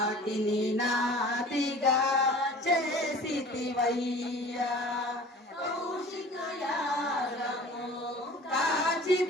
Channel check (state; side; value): normal; both; correlation 0.44